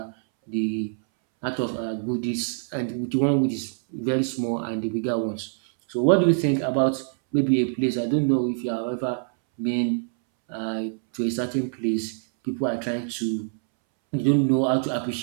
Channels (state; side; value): silent; left; 62 dB below the other